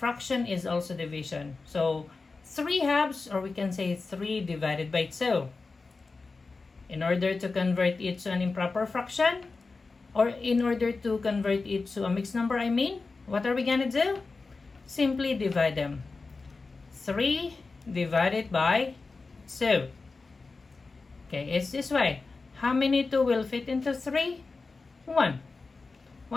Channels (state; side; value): quieter; right; 4.0 dB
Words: is also division. So 3/2, or we can say 3 divided by 2. In order to convert it to an improper fraction, or in order to convert it to a mixed number, what are we gonna do? Simply divide them. 3 divided by 2. Okay, it's this way. How many 2 will fit into 3? 1.